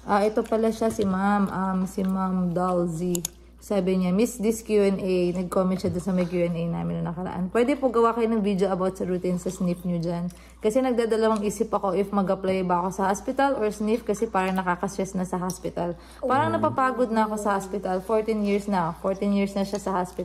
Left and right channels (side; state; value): both; identical; correlation 1.00